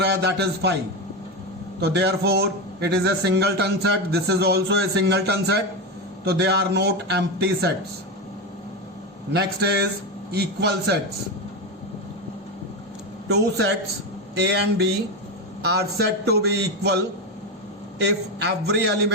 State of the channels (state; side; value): normal; both; correlation 0.14